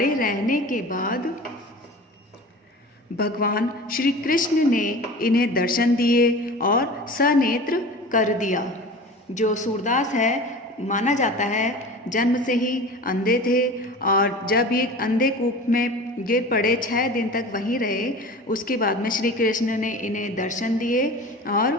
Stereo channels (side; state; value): both; normal; correlation 0.37